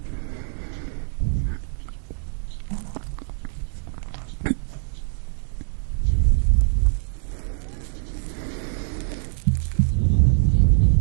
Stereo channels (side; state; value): left; silent; digital silence